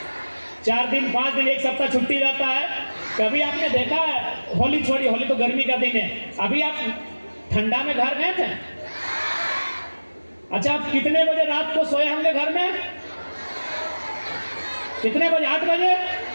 4 दिन 5 दिन 1 सप्ताह छुट्टी रहता है, कभी आपने देखा है? होली छोड़िए, होली तो गर्मी का दिन है, अभी आप ठंडा में घर गए थे? अच्छा, आप कितने बजे रात को सोए होंगे घर में? कितने बजे? 8 बजे?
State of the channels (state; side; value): inverted; both; correlation -1.00